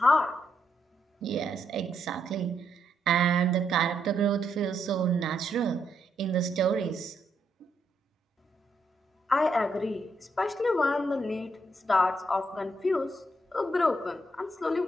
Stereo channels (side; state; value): both; normal; correlation 0.78